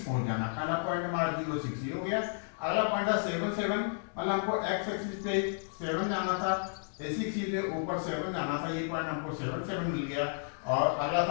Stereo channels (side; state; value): right; silent; digital silence